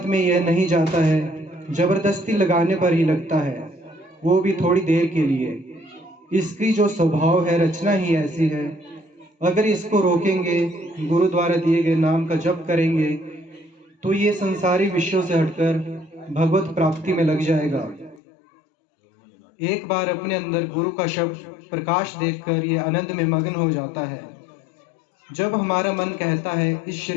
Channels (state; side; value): drops out; right; at 18.2 s